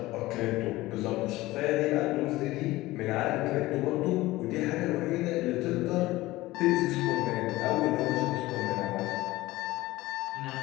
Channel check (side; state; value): right; quieter; 18.4 dB